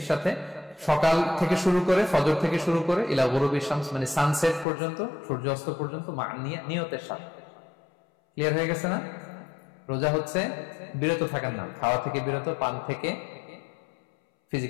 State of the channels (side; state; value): right; drops out; at 4.7 s